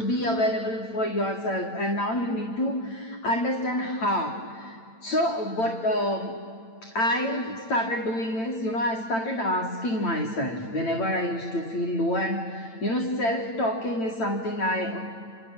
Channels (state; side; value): late; right; 8.9 ms